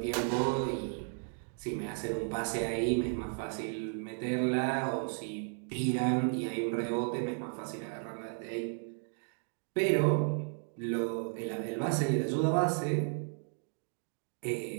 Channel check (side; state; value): left; silent; 55 dB below the other